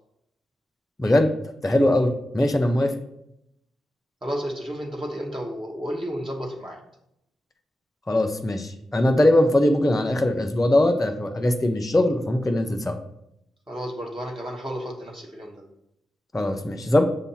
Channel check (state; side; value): normal; both; correlation 0.93